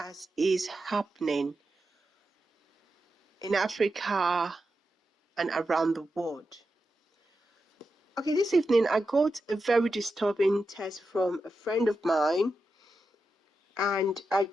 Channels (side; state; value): both; normal; correlation 0.89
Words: is happening in Africa and around the world. Okay, this evening I got a very disturbing text from a friend of mine, and I